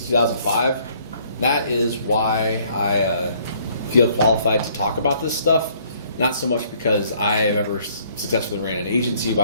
2005. That is why I feel qualified to talk about this stuff. Not so much because I have ever successfully ran an agency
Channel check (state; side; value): inverted; both; correlation -0.62